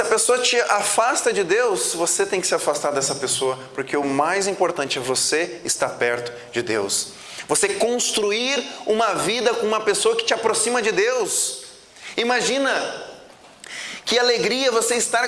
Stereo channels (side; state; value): both; identical; correlation 1.00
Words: pessoa te afasta de Deus, você tem que se afastar dessa pessoa, porque o mais importante é você estar perto de Deus. Você construir uma vida com uma pessoa que te aproxima de Deus. Imagina que alegria você estar